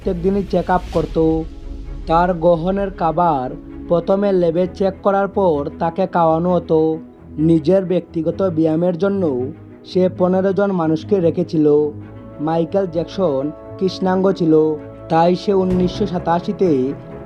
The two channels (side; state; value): both; identical; correlation 1.00